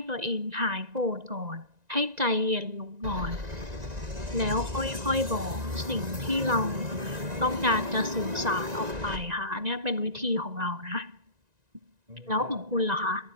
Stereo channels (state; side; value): late; left; 1.9 ms